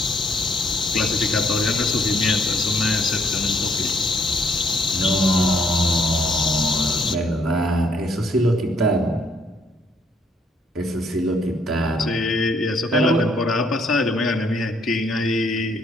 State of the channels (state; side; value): normal; both; correlation 0.67